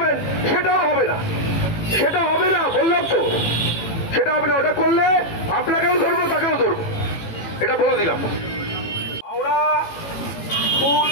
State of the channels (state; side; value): late; right; 18 ms